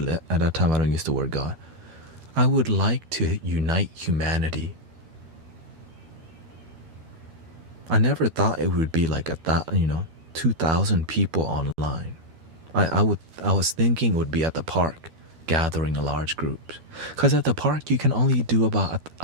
that time I don't use the word God. I would like to unite humanity. I never thought it would be like 2,000 people online. I was thinking it would be at the park, gathering a large group. Because at the park you can only do about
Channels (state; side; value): late; left; 12 ms